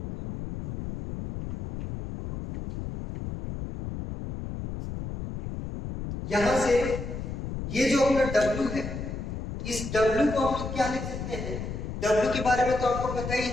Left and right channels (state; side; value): noise; left; rumble, 6 dB below the sound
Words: यहां से ये जो अपना W है, इस W को हम लोग क्या लिख सकते हैं? W के बारे में तो आपको पता ही